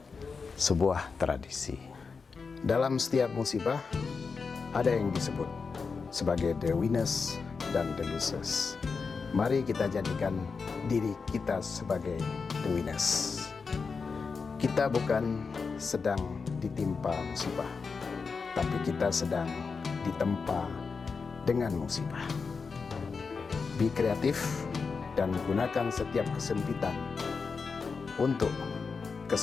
sebuah tradisi. Dalam setiap musibah ada yang disebut sebagai the winners dan the losers. Mari kita jadikan diri kita sebagai the winners. Kita bukan sedang ditimpa musibah, tapi kita sedang ditempa dengan musibah. Be kreatif dan gunakan setiap kesempitan untuk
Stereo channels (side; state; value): right; quieter; 5.0 dB